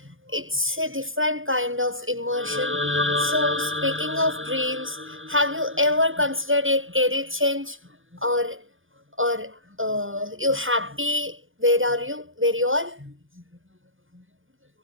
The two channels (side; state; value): left; late; 0.58 ms